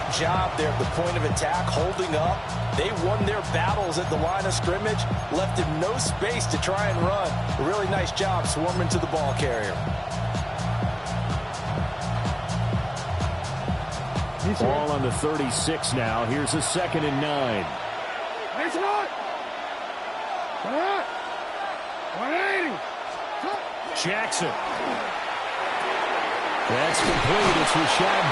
job there at the point of attack, holding up. They won their battles at the line of scrimmage, left him no space to try and run. A really nice job swarming to the ball carrier. Ball on the 36 now. Here's a 2nd and 9. It's not. 180. Jackson. That's complete. It's Rashad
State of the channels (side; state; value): both; identical; correlation 1.00